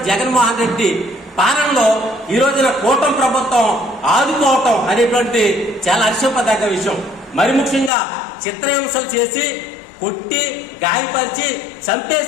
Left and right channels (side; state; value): right; drops out; at 7.9 s